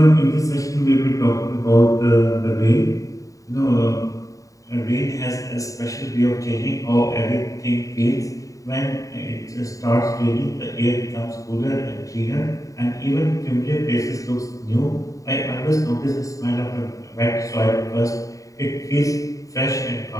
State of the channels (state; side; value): late; right; 0.16 ms